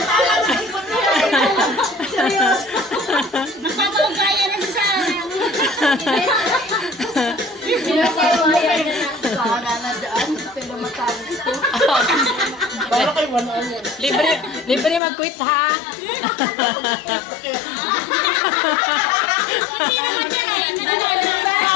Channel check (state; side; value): drops out; right; at 15.0 s